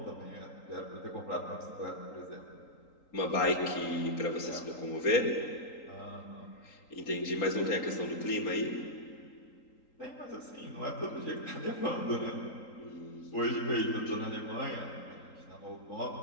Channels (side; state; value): right; late; 3.8 ms